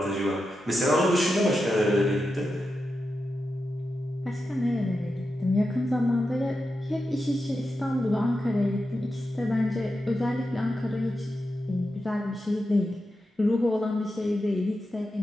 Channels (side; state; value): both; normal; correlation 0.89